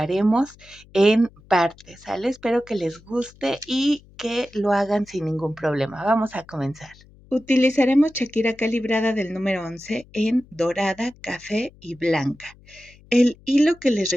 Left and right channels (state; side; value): noise; left; hum, 26 dB below the sound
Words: en partes, ¿sale? Espero que les guste y que lo hagan sin ningún problema. Vamos a comenzar. Utilizaremos Shakira calibrada del número 11 en dorada, café y blanca. El hilo que les